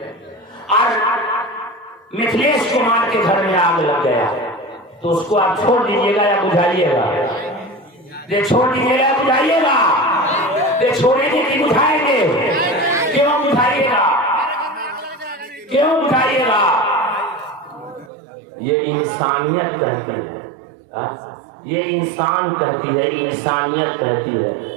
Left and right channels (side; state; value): left; drops out; at 18.1 s